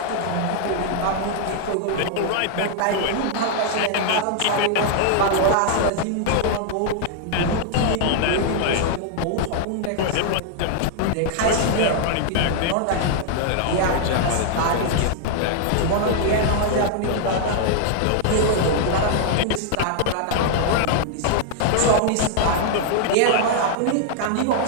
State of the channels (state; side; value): different; both; correlation -0.01